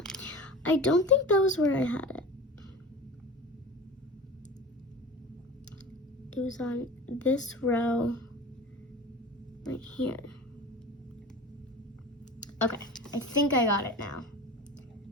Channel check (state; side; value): normal; both; correlation 0.34